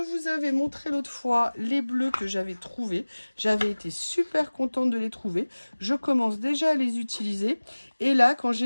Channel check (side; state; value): both; inverted; correlation -1.00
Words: avais montré l'autre fois les bleus que j'avais trouvés. J'avais été super contente de les trouver. Je commence déjà à les utiliser. Et là, quand